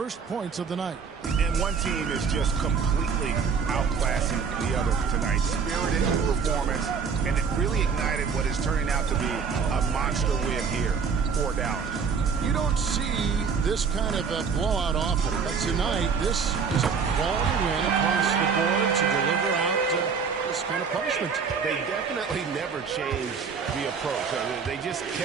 points of the night. And one team is just completely outclassing the other tonight. Spirited performance, and it really ignited what is turning out to be a monster win here for Dallas. You don't see this kind of a blowout often, but tonight this is a quality win across the board to deliver out this kind of punishment. They definitely never changed the approach. They just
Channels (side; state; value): left; quieter; 5.9 dB